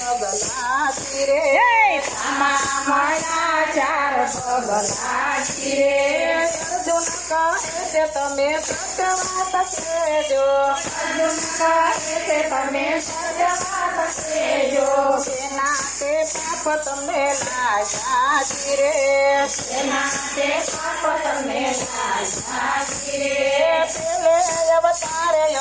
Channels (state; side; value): noise; left; hum, 25 dB below the sound